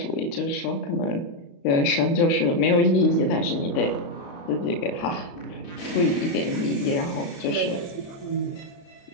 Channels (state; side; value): late; right; 35 ms